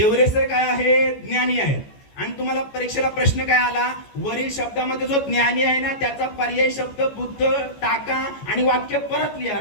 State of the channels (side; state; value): right; late; 14 ms